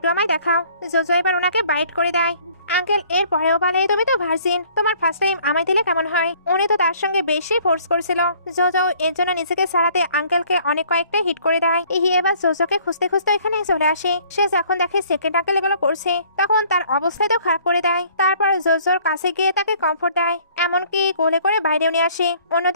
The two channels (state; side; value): inverted; both; correlation -0.57